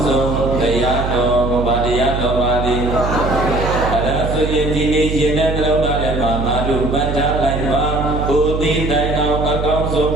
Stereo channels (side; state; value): right; noise; hum, 3 dB below the sound